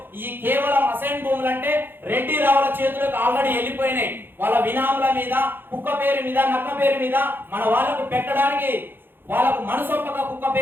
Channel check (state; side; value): late; left; 0.10 ms